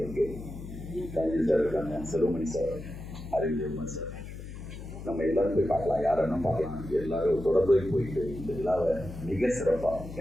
இருக்கு. கலைஞர் சார் இருக்காங்க, செல்வமணி சார், அறிவியல் சார், நம்ம எல்லாரும் போய் பார்க்கலாம், யாரும் பார்க்கலாம். எல்லாரும் தொடர்பு போயிட்டு இந்த விழாவை மிக சிறப்பாக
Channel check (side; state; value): left; noise; hum, 11 dB below the sound